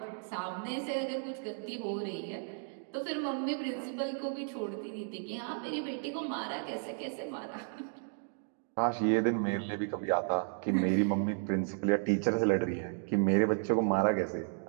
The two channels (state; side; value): silent; left; 55 dB below the other